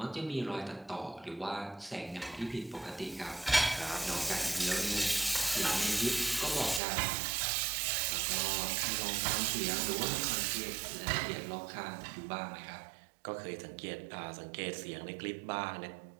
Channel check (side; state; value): left; drops out; at 6.8 s